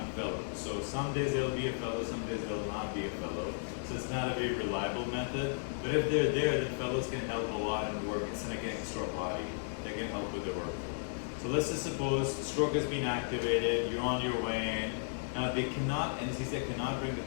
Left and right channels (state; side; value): silent; right; 55 dB below the other